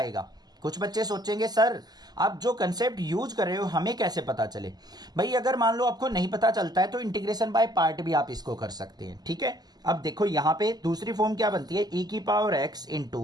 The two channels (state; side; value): late; left; 0.20 ms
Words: कुछ बच्चे सोचेंगे सर आप जो कंसेप्ट यूज कर रहे हो हमें कैसे पता चले। भाई अगर मान लो आपको नहीं पता चलता है तो इंटीग्रेशन बाय पार्ट भी आप इसको कर सकते हैं, ठीक है। अब देखो यहां पे दूसरी फॉर्म क्या बनती है, e की power x